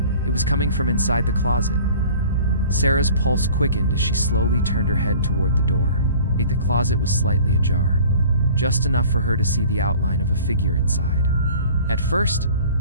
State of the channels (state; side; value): inverted; both; correlation -0.47